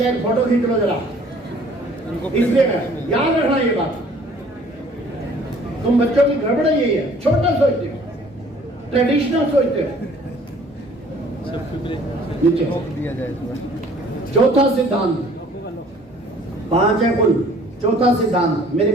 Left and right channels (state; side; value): normal; both; correlation 0.55